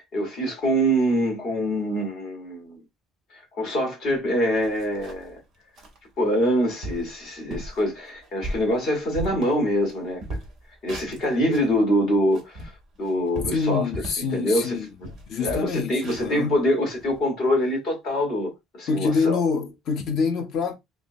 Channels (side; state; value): both; normal; correlation 0.58